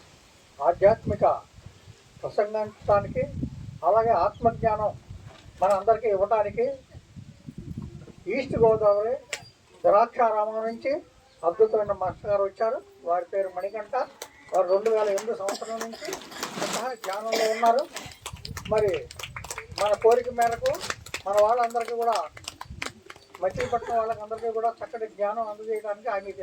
ఆధ్యాత్మిక ప్రసంగించడానికి, అలాగే ఆత్మజ్ఞానం మన అందరికీ ఇవ్వడానికి ఈస్ట్ గోదావరి ద్రాక్షారామం నుంచి అద్భుతమైన మాస్టర్ గారు వచ్చారు. వారి పేరు మణికంఠ. వారు 2008 సంవత్సరం నుంచి స్వతహా ధ్యానంలో ఉన్నారు. మరి మన కోరిక మేరకు మన వాళ్ళందరికీ కూడా, మచిలీపట్నం వాళ్ళకందరికీ కూడా చక్కటి జ్ఞానం అందజేయడానికి ఆయనకి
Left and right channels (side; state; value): both; identical; correlation 1.00